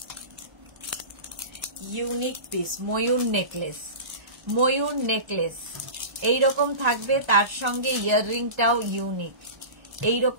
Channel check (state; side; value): late; left; 1.3 ms